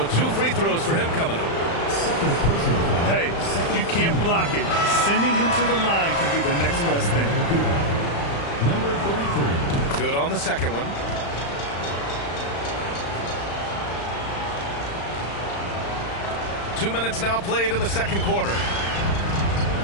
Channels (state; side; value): late; right; 35 ms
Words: 2 free throws for him coming up. Hey, you can't block it. Sending him to the line can be the next best thing. Number 33. Good on the second one. Two minutes now played in the second quarter.